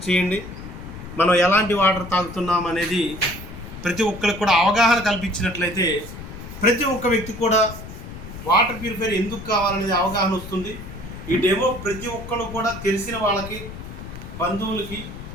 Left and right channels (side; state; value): left; noise; rumble, 12 dB below the sound